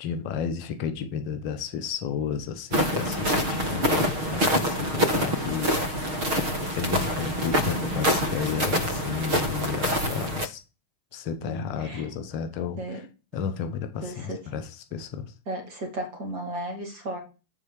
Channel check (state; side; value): late; left; 6.4 ms